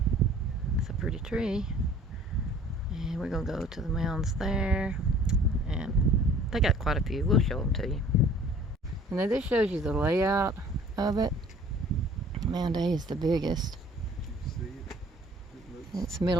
It's a pretty tree. And we're gonna go to the mounds there. And they got quite a few. We'll show them to you. And then this shows you the layout of it. Mound A is the biggest. It's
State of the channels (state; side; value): normal; both; correlation 0.51